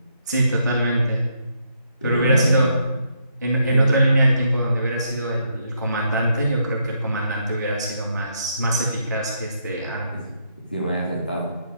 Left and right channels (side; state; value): both; inverted; correlation -0.76